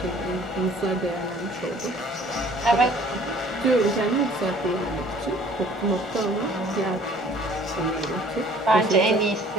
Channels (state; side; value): normal; both; correlation 0.53